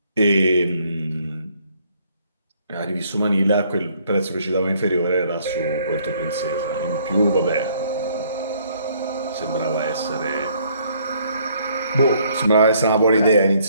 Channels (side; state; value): both; inverted; correlation -0.65